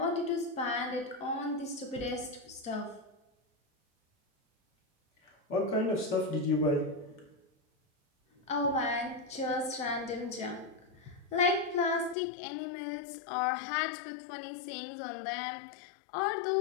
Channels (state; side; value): drops out; right; at 12.2 s